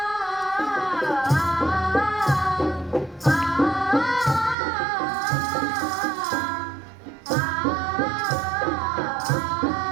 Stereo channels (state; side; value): drops out; left; at 4.5 s